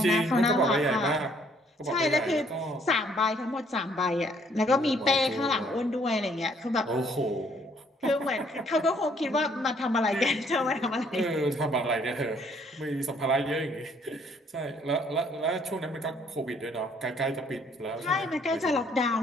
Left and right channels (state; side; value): normal; both; correlation 0.64